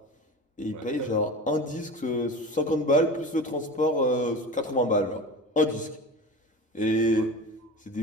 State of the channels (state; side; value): normal; both; correlation 0.32